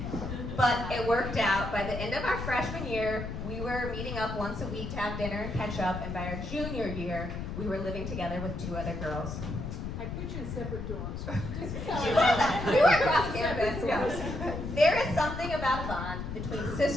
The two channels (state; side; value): noise; left; rumble, 6 dB below the sound